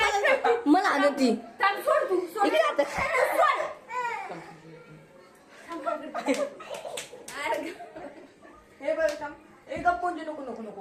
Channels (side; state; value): both; identical; correlation 1.00